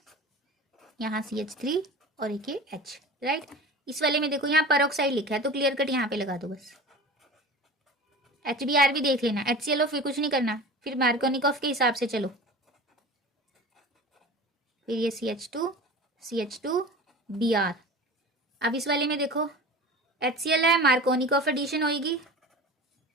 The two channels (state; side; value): normal; both; correlation 0.36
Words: यहाँ CH3 और एक ये H, राइट। इस वाले में देखो यहाँ पेरोक्साइड लिखा है तो क्लियर कट यहाँ पे लगा दो बस। HBr भी देख लेना, HCl फिर कुछ नहीं करना, फिर मार्कोनिकॉफ के हिसाब से चलो। फिर ये CH2 Br। अब इस वाले में देखो HCl है, मार्कोनिकॉफ एडिशन होगी